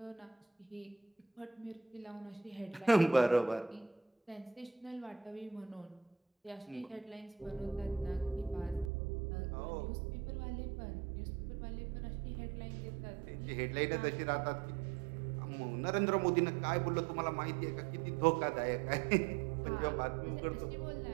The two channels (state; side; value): drops out; left; at 8.9 s